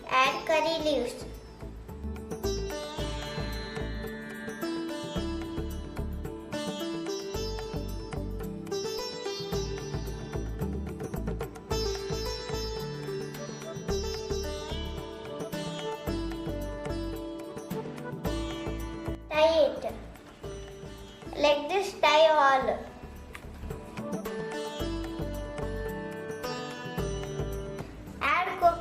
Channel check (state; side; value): identical; both; correlation 1.00